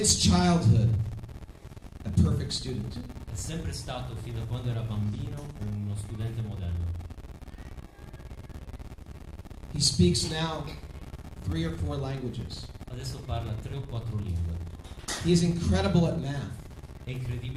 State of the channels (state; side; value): identical; both; correlation 1.00